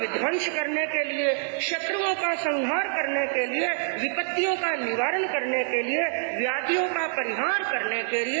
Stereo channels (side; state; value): left; silent; 61 dB below the other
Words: करने के लिए, शत्रुओं का संहार करने के लिए, विपत्तियों का निवारण करने के लिए, व्याधियों का परिहार करने के